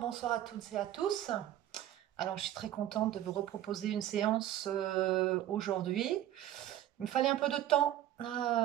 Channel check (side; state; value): left; quieter; 12.6 dB